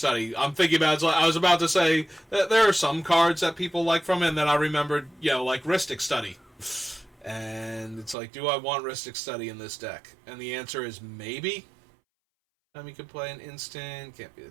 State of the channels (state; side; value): drops out; left; at 8.2 s